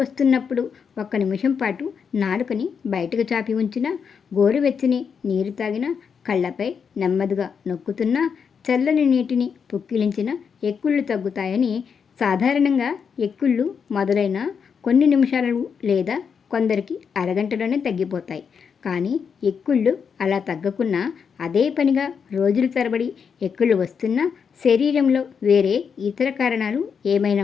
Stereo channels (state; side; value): quieter; right; 6.5 dB